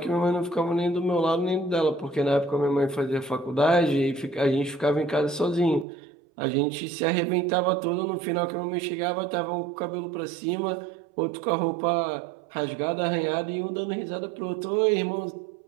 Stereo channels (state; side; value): drops out; left; at 5.9 s